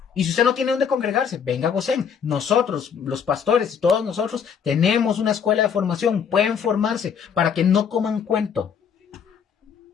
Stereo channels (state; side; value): quieter; right; 7.2 dB